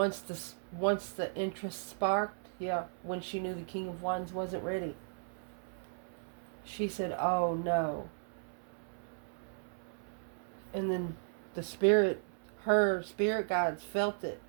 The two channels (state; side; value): silent; left; 54 dB below the other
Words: the interest sparked, yeah, when she knew the King of Wands wasn't ready. She said, oh no. And then the spirit, her spirit guides felt it.